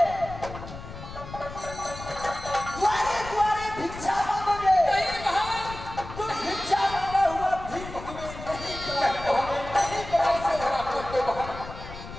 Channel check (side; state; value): left; noise; rumble, 12 dB below the sound